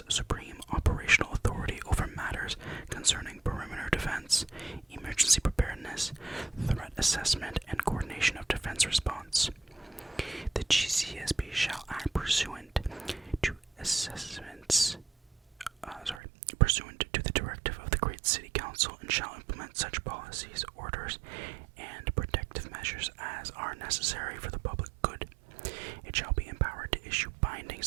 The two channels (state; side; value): drops out; left; at 16.2 s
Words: supreme operational authority over matters concerning perimeter defense, emergency preparedness, threat assessment, and coordination of defense response. The GCSB shall act pursuant to pursuant to the directive of the Great City Council, and shall implement such policies, orders, and protective measures as are necessary for the public good. It shall be empowered to issue binding